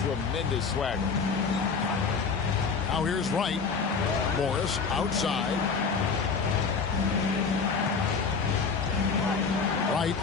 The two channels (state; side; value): quieter; right; 5.2 dB